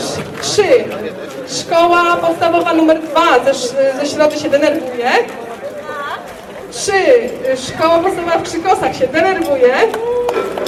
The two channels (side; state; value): both; identical; correlation 1.00